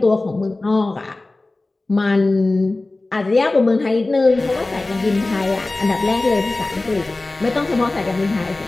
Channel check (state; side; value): quieter; right; 3.1 dB